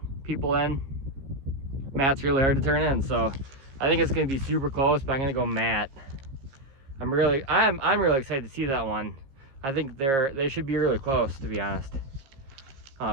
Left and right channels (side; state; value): left; late; 15 ms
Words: people in, Matt's really hard to turn in. So I think it's going to be super close, but I'm going to go Matt. I'm really excited to see that one. I think they should be really close, to be honest.